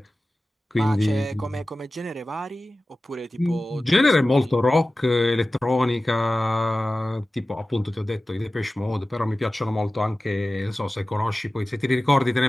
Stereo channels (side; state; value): both; normal; correlation 0.96